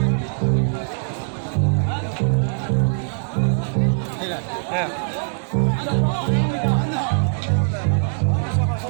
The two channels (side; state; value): left; silent; 65 dB below the other